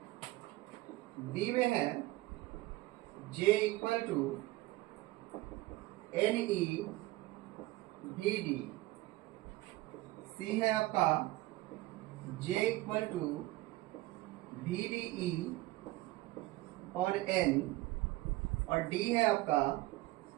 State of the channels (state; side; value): quieter; left; 18.5 dB